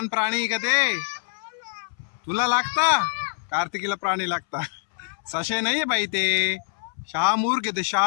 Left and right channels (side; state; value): right; silent; 62 dB below the other